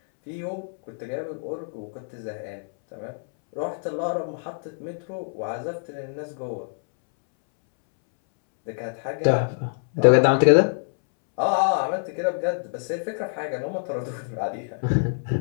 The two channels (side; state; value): right; silent; 61 dB below the other